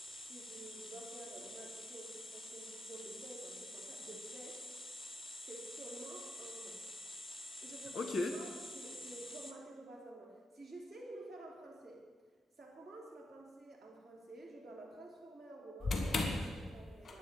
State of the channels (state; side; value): normal; both; correlation 0.83